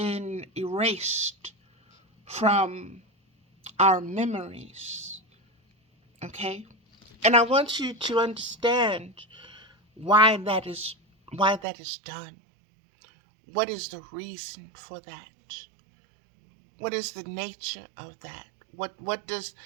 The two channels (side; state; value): left; drops out; at 11.7 s